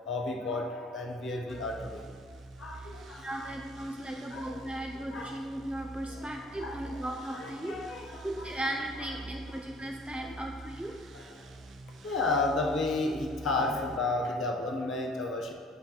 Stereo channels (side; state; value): both; normal; correlation 0.53